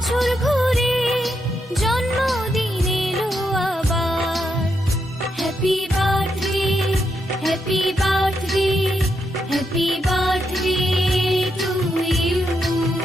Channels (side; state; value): both; normal; correlation 0.81